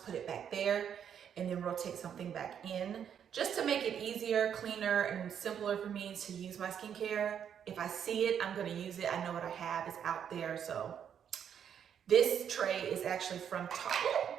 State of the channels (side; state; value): left; quieter; 8.5 dB